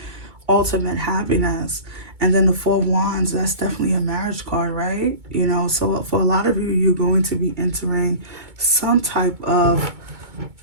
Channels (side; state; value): left; late; 2.2 ms